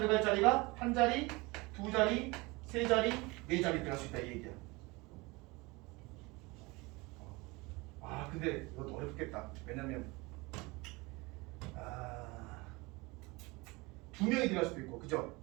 자리가 한 자리, 두 자리, 세 자리, 네 자리 들어갈 수 있다 이 얘기야. 근데 이것도 어렵겠다. 왜냐면 두 명이 들어갈 수도 있고, 그죠?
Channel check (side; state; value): left; quieter; 24.4 dB